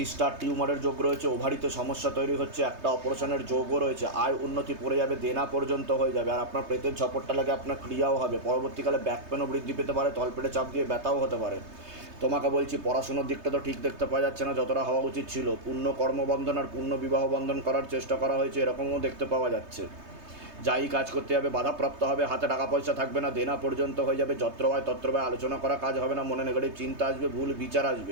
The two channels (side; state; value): left; late; 3.2 ms